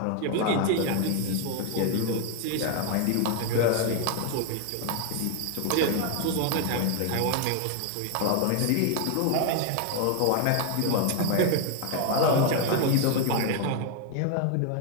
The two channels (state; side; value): different; both; correlation 0.01